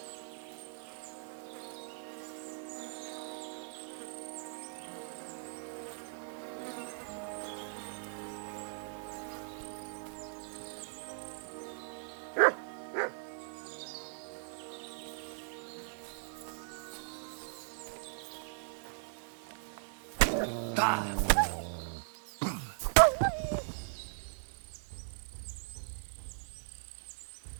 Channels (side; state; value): left; silent; digital silence